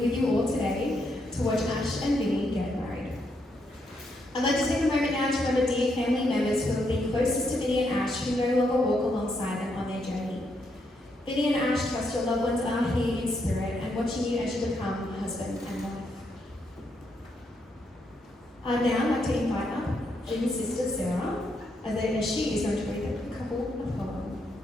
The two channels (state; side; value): normal; both; correlation 0.78